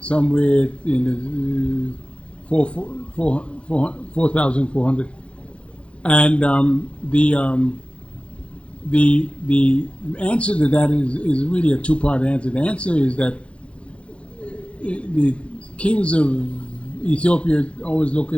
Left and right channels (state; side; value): late; right; 0.060 ms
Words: somewhere in the 4,400. And the answer to that is really a 2-part answer. The answer is that the kings of Ethiopia always look